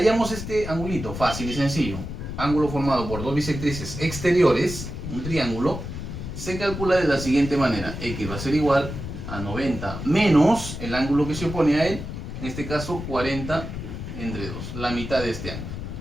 este angulito? Fácil y sencillo. Ángulo formado por dos bisectrices exteriores, un triángulo, se calcula de la siguiente manera: X va a ser igual a 90 menos el ángulo que se opone a él, en este caso 40 entre 2, la mitad de este ángulo.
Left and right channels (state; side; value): noise; left; rumble, 7 dB below the sound